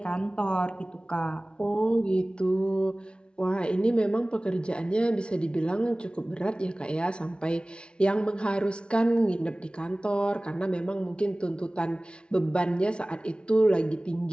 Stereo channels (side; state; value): right; late; 0.057 ms